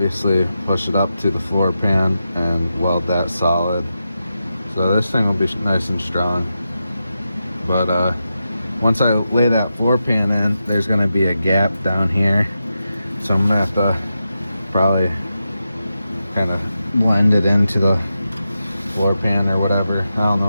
push it up to the floor pan and weld that solid. So this thing will be nice and strong. But once I lay that floor pan in, there's gonna be a gap down here. So I'm gonna have to probably kind of blend it into the floor pan or whatever. I don't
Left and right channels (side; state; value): both; inverted; correlation -0.89